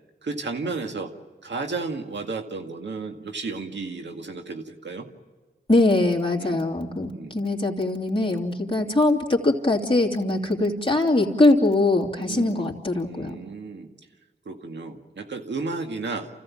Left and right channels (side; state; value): both; normal; correlation 0.69